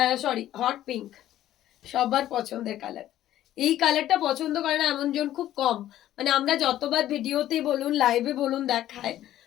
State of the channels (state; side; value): quieter; right; 12.9 dB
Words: সরি, হট পিঙ্ক, সবার পছন্দের কালার। এই কালারটা পছন্দ করে না এমন জন খুব কম। মানে আমরা যতবার ভিডিওতে বলুন লাইভে বলুন দেখায়